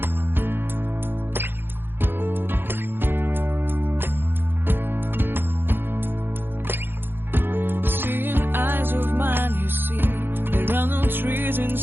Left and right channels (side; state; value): left; late; 0.10 ms